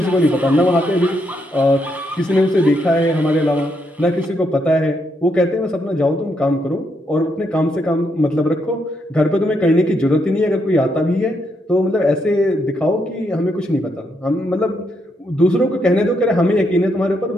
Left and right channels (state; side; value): normal; both; correlation 0.78